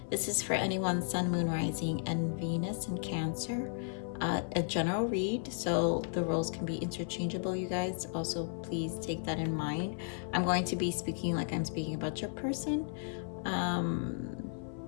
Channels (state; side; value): silent; right; 55 dB below the other